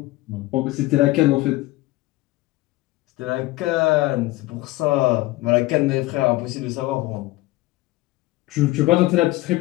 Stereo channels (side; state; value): right; quieter; 19.0 dB